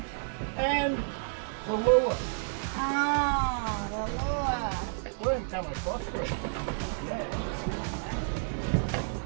And the lure. Oh, the lure. We haven't come across it. Yeah.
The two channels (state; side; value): silent; left; digital silence